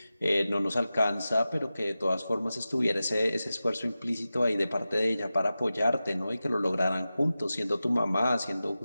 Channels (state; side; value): inverted; both; correlation -0.94